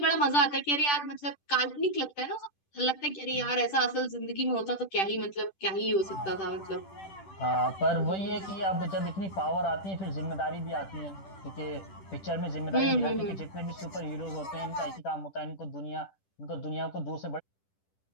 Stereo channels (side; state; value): right; late; 10 ms